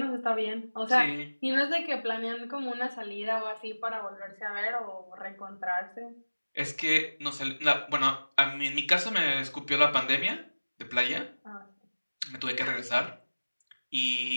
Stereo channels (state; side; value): inverted; both; correlation -1.00